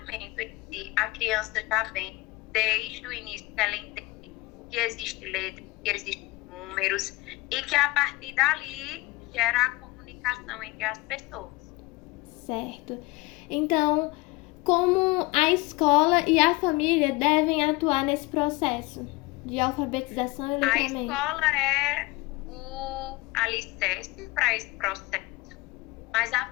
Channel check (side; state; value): right; quieter; 22.0 dB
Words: em si, a criança já vem desde o início que ela entende que existe letra, que existem números e que a partir dali gera a comunicação entre as pessoas. Certo. Então, como a escola e a família devem atuar nesse processo de alfabetização e A letramento? escola é o alicerce para esse processo, mas a